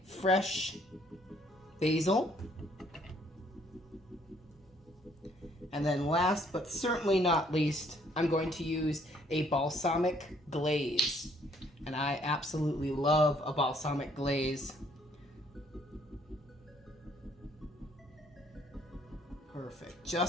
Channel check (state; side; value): normal; both; correlation 0.65